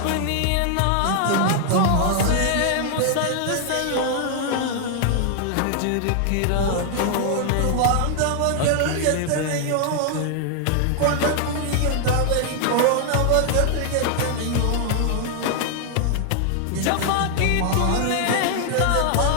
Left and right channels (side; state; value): both; different; correlation 0.00